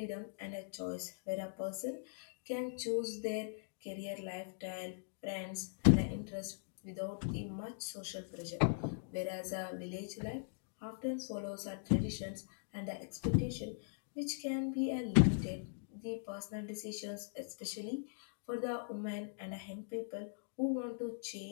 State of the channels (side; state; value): right; silent; digital silence